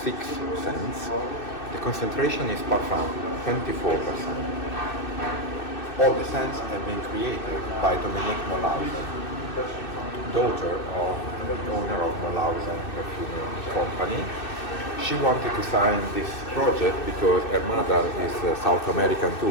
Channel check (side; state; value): right; late; 2.6 ms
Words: 6 scents. The concentration is parfum, 24%. All the scents have been created by Dominique Mollause, daughter of the owner of Mollause Perfume Company. She wanted to sign this project because her mother is South American